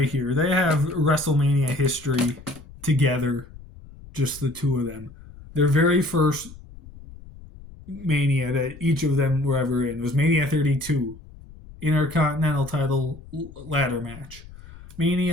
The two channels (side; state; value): left; noise; rumble, 19 dB below the sound